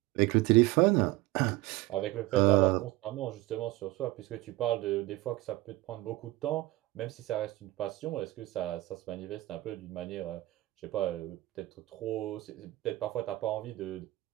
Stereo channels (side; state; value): left; quieter; 18.6 dB